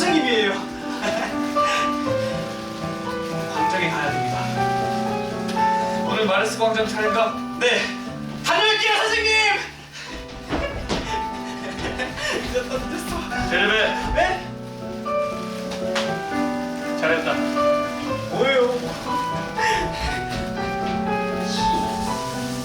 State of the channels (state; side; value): identical; both; correlation 1.00